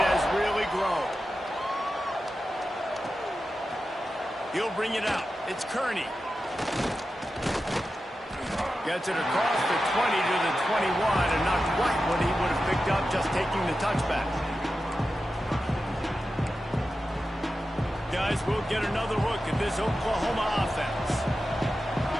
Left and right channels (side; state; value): both; normal; correlation 0.92